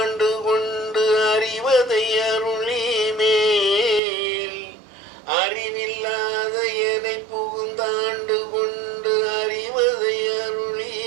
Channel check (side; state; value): left; drops out; at 4.0 s